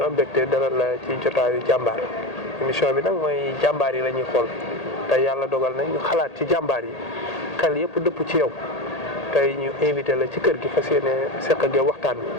am mbégte dalal la ci jotaayu jàmbaar émission bi nag mooy jàmbaar yi la ñuy xool tey yàlla dogal na ñu xalaat ci jàmbaar yi xel yëpp dëpp ci yow tey ñu invité la ci kër gi fas yéene seq ak yow waxtaan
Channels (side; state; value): right; late; 1.8 ms